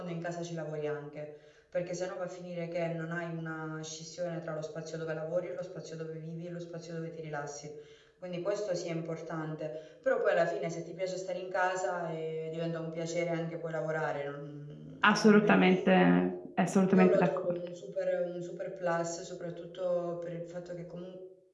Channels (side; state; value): both; identical; correlation 1.00